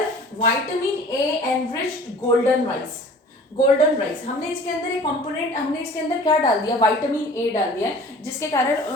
vitamin A enriched golden rice, हमने इसके अंदर एक कंपोनेंट, हमने इसके अंदर क्या डाल दिया, विटामिन ए डाल दिया है, जिसके कारण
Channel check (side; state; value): both; normal; correlation 0.47